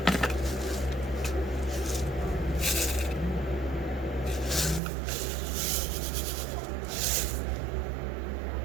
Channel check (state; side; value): drops out; left; at 4.8 s